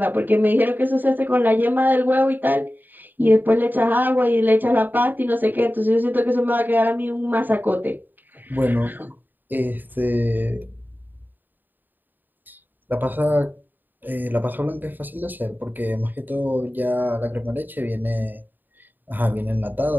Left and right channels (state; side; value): late; left; 0.090 ms